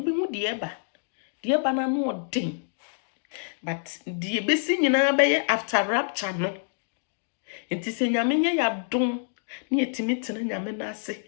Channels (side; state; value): right; silent; digital silence